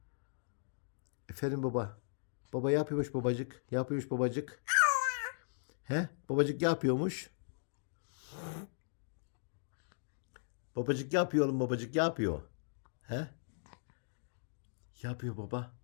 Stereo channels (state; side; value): silent; right; digital silence